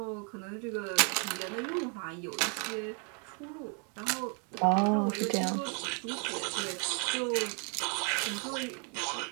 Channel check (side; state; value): left; quieter; 38.2 dB